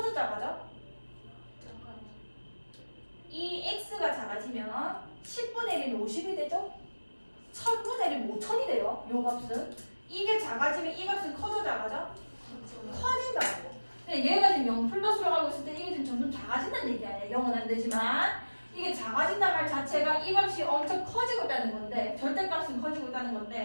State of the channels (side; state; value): both; inverted; correlation -1.00